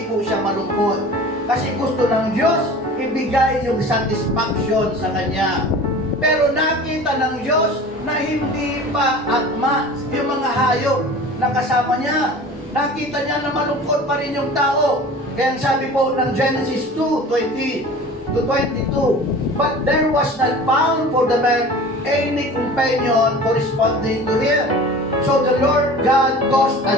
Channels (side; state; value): both; normal; correlation 0.40